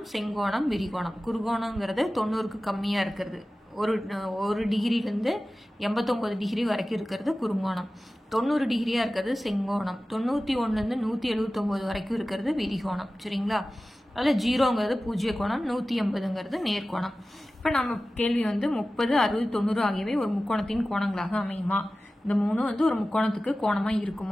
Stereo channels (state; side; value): normal; both; correlation 0.96